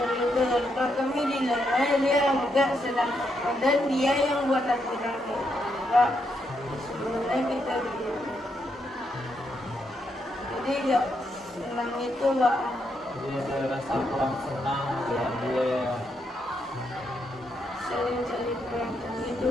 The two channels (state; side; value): normal; both; correlation 0.79